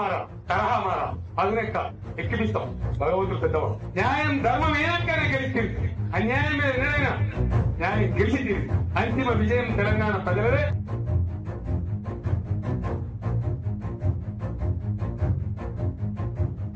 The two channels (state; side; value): identical; both; correlation 1.00